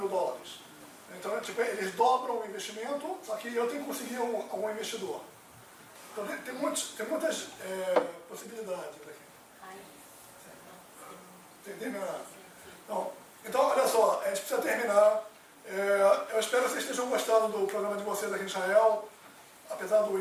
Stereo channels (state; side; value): identical; both; correlation 1.00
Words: Então, tipo, eles dobram o investimento, só que eu tenho que conseguir algum investidor. Então, tem muitas possibilidades aqui. Entendeu? Então, olha só, a gente precisa terminar. Eu espero que vocês estejam gostando do programa de vocês aqui em Israel, apesar do